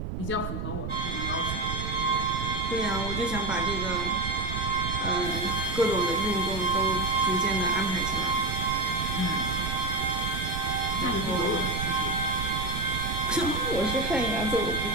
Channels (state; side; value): noise; right; rumble, 5 dB below the sound